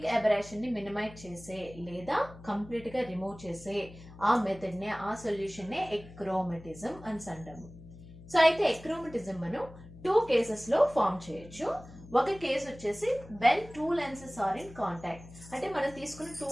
aberration ని మినిమైజ్ చేసే లేదా కంప్లీట్ గా రిమూవ్ చేసే ఆ మెథడ్ నే, ఆ సొల్యూషన్ నే ఎక్రోమటిజం అని అంటాము. సో అయితే ఎక్రోమటిజం మనం 2 కేసెస్ లో ఫామ్ చేయొచ్చు. ఒక కేసు వచ్చేసి when 2 lenses are in contact, అంటే మనం తీసుకున్న 2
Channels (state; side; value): noise; left; hum, 18 dB below the sound